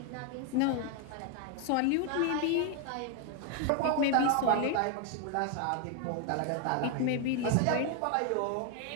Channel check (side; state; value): both; different; correlation 0.01